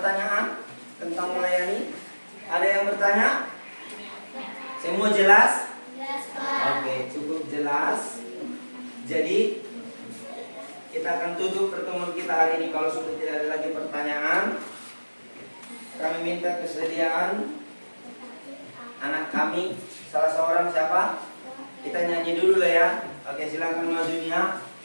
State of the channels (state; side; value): inverted; both; correlation -1.00